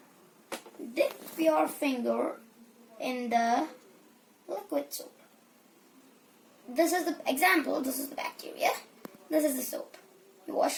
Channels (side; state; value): both; identical; correlation 1.00